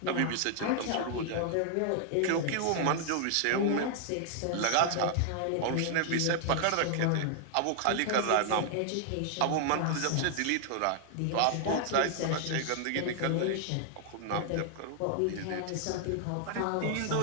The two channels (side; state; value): both; different; correlation 0.00